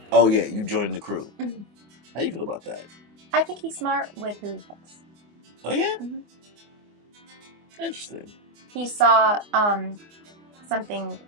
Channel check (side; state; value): left; late; 24 ms